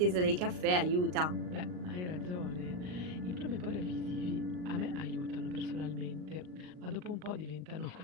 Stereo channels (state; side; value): late; left; 39 ms